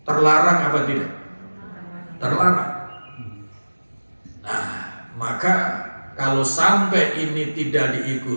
terlarang apa tidak? Terlarang. Nah, maka kalau sampai ini tidak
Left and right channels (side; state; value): both; inverted; correlation -1.00